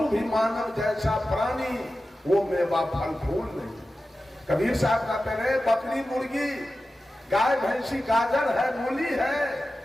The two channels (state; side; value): normal; both; correlation 0.94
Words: भी मानव जैसा प्राणी, वो मेवा फल फूल नहीं। कबीर साहब कहते रहे, बकरी मुर्गी, गाय भैंसी, गाजर है, मूली है,